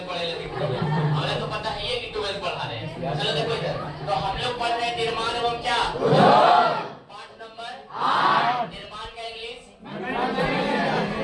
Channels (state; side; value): identical; both; correlation 1.00